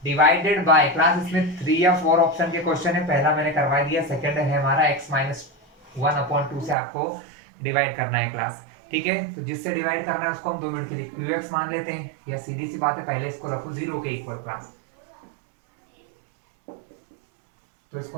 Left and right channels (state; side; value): drops out; left; at 6.8 s